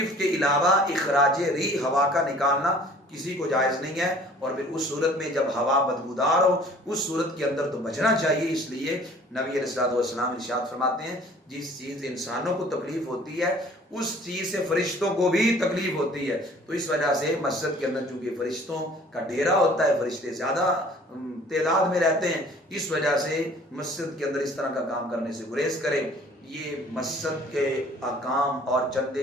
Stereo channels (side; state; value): both; normal; correlation 0.52